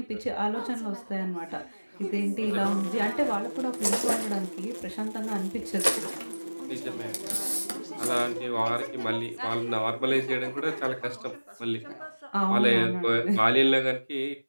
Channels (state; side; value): inverted; both; correlation -1.00